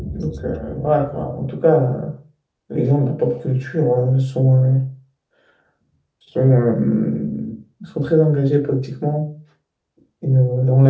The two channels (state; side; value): identical; both; correlation 1.00